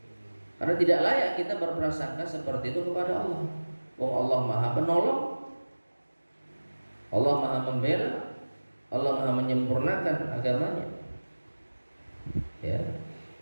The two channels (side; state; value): both; inverted; correlation -1.00